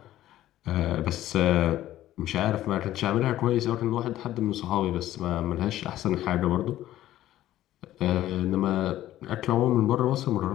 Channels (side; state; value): right; quieter; 13.8 dB